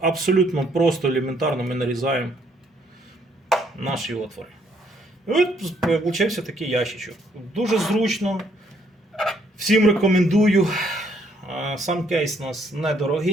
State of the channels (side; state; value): both; normal; correlation 0.68